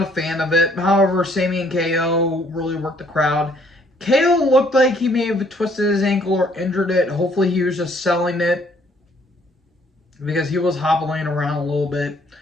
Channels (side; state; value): both; normal; correlation 0.63